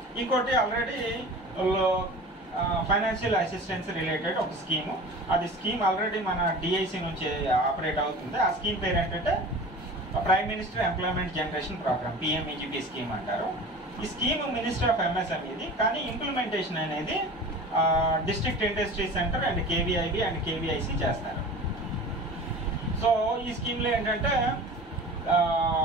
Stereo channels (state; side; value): normal; both; correlation 0.38